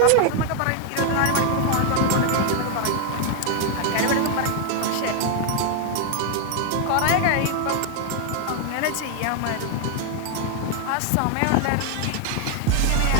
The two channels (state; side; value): different; both; correlation 0.01